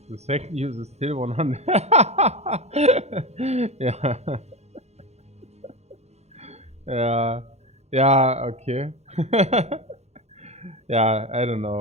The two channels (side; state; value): left; late; 0.31 ms